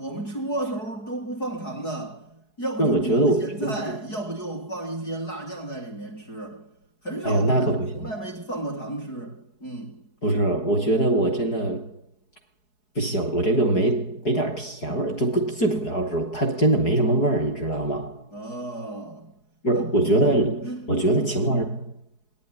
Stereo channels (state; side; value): late; right; 4.7 ms